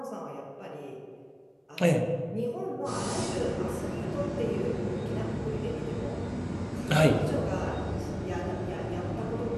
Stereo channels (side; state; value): both; identical; correlation 1.00